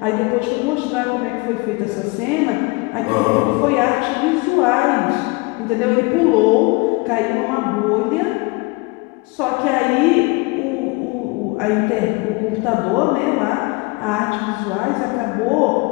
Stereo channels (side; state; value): right; quieter; 26.3 dB